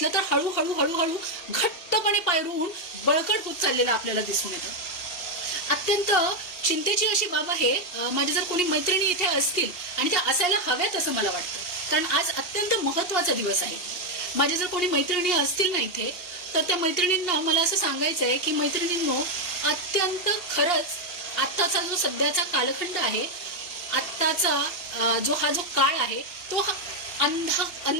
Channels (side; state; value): right; late; 2.8 ms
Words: तर हळूहळू हळूहळू घट्टपणे पायरून बळकट होत चाललेलं आपल्याला दिसून येतं. अत्यंत चिंतेची अशी बाब आहे. माझ्या जर कोणी मैत्रिणी इथे असतील आणि त्या असायला हव्यात असं मला वाटतं, कारण आज अत्यंत महत्त्वाचा दिवस आहे. माझ्या जर कोणी मैत्रिणी असतील ना इथे, तर त्या मैत्रिणींना मला असं सांगायचं आहे की मैत्रिणींनो, अत्यंत खरंच आत्ताचा जो सध्याचा कालखंड आहे, आत्ताचा हा जो काळ आहे तो